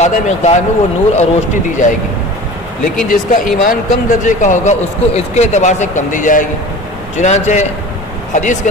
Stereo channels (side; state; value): both; normal; correlation 0.38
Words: مقدار میں وہ نور اور روشنی دی جائے گی، لیکن جس کا ایمان کم درجے کا ہوگا اس کو اس کے اعتبار سے کم دی جائے گی۔ چنانچہ حدیث کے